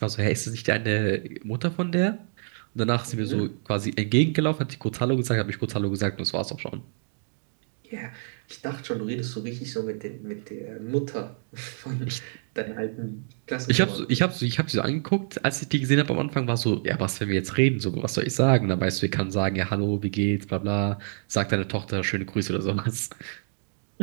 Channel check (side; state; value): left; silent; digital silence